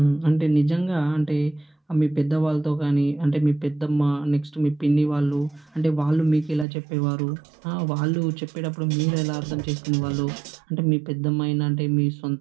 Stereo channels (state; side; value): drops out; left; at 6.7 s